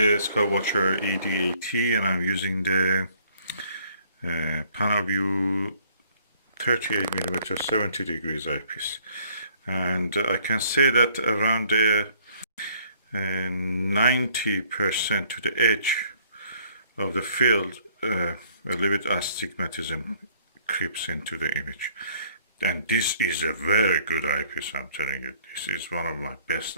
Skywatcher ED80 and I'm using the PanaView 38mm 70 degrees eyepiece. And I can say that around the 90% to the edge of the field, a little bit astigmatism creeps into the image. And this is a very good eyepiece, I'm telling you. This is one of my best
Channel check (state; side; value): inverted; both; correlation -0.60